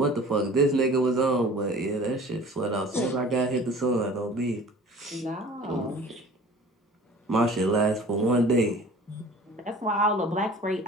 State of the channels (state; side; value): normal; both; correlation 0.44